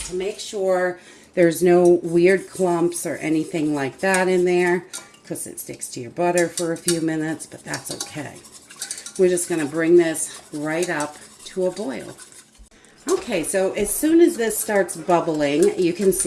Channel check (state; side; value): identical; both; correlation 1.00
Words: to make sure there's no weird clumps or anything like that in there, because it sticks to your butter for a few minutes, but that's okay. We're just going to bring this right up to a boil. Okay, so as soon as this starts bubbling, you can